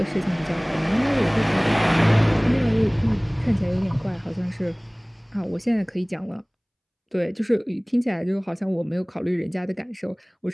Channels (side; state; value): both; identical; correlation 1.00